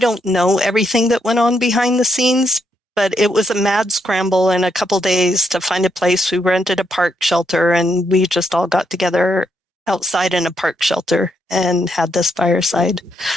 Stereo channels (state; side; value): normal; both; correlation 0.78